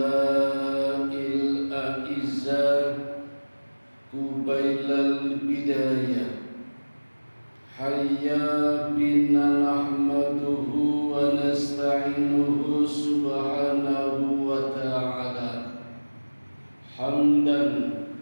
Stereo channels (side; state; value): both; inverted; correlation -1.00